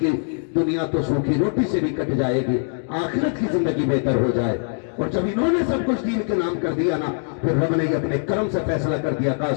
دنیا تو سوکھی روٹی سے بھی کٹ جائے گی، آخرت کی زندگی بہتر ہو جائے، اور جب انہوں نے سب کچھ دین کے نام کر دیا نا، پھر رب نے یہ اپنے کرم سے فیصلہ کر دیا، کہا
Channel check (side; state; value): right; silent; digital silence